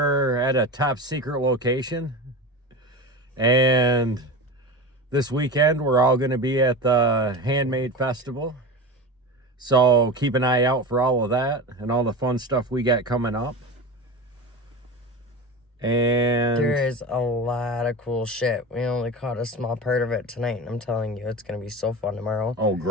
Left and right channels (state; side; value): normal; both; correlation 0.27